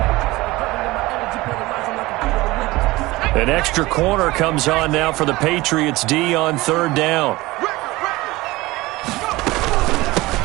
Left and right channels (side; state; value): left; quieter; 20.2 dB